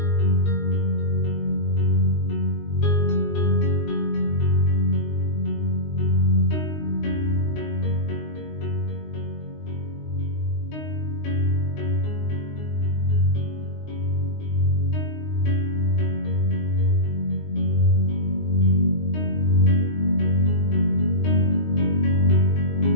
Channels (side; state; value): right; late; 19 ms